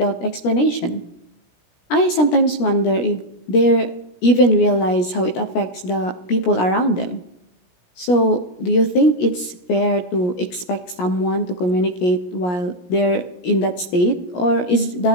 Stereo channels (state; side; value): late; right; 17 ms